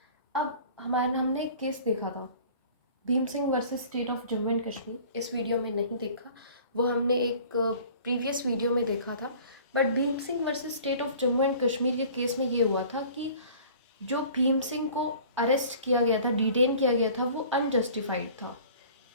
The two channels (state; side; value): inverted; both; correlation -0.47